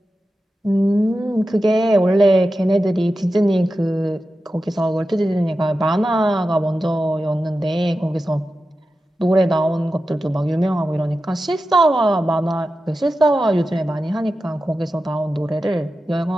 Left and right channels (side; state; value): both; normal; correlation 0.92